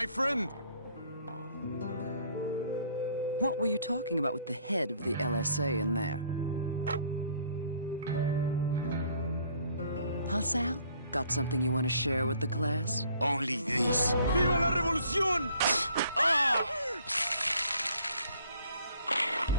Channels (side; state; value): both; inverted; correlation -0.61